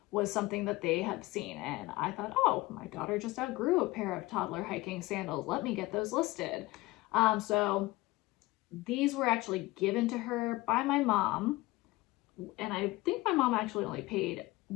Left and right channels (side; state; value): right; quieter; 19.9 dB